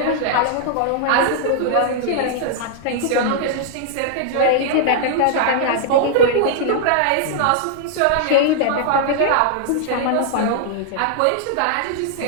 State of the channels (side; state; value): both; different; correlation -0.01